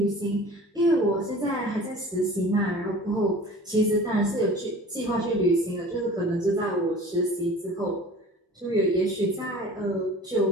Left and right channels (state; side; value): normal; both; correlation 0.42